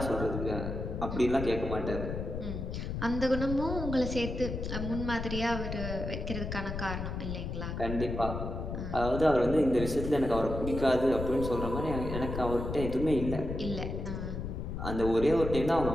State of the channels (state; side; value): noise; left; rumble, 5 dB below the sound